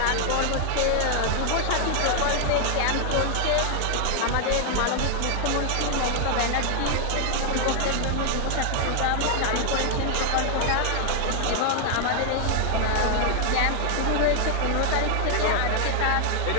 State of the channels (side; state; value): both; different; correlation 0.00